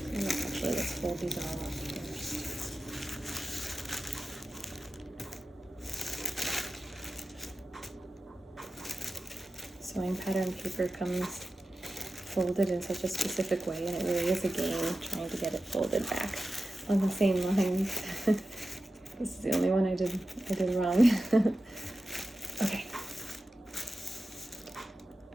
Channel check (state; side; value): normal; both; correlation 0.93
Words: Actually, let's fold these all up first. Sewing pattern paper comes folded in such a specific way, and it really is a game trying to get it folded back on the same lines. This is the only one I did wrong. Okay.